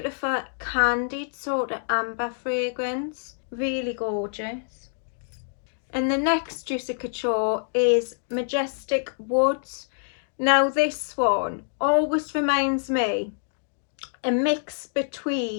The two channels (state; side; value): silent; right; digital silence